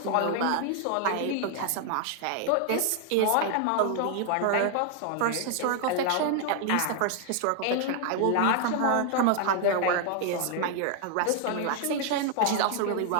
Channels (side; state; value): both; different; correlation 0.00